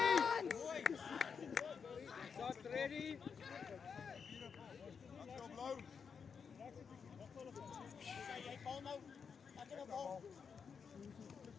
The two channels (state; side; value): quieter; right; 6.2 dB